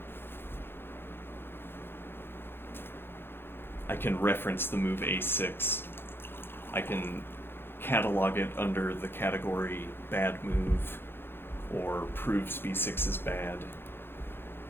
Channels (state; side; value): late; right; 0.10 ms